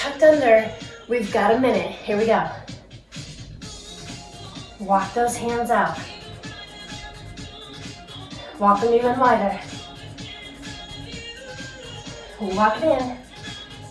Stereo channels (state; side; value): identical; both; correlation 1.00